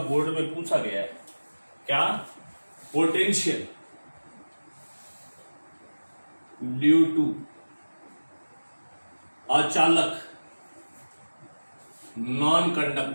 में पूछा गया है। क्या? पोटेंशियल ड्यू टू अचालक नॉन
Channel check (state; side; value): inverted; both; correlation -1.00